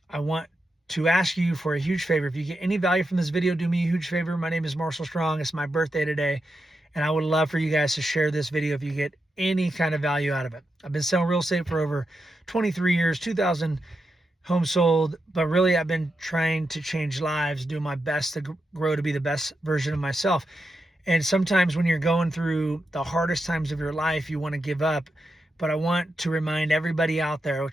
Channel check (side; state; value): both; normal; correlation 0.87